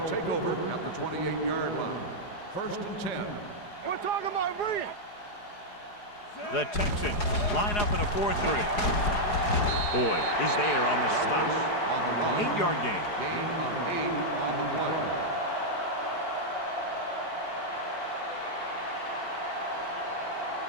take over at the 28-yard line. 1st and 10. We're talking about brilliant. The Texans line up in a 4-3. Boyd is there on the stop. On the run. 8-yard gain. Gain of 8 on the play.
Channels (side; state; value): right; late; 4.8 ms